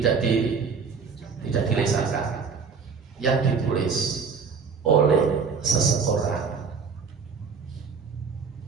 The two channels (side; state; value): left; quieter; 5.6 dB